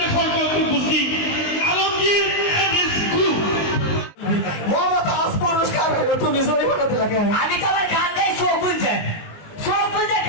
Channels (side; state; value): right; late; 19 ms